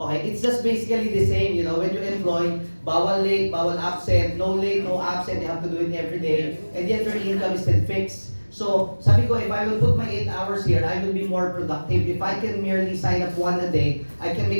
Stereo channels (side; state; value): both; inverted; correlation -1.00